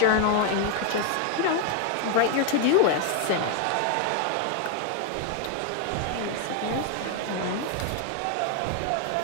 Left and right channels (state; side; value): different; both; correlation 0.00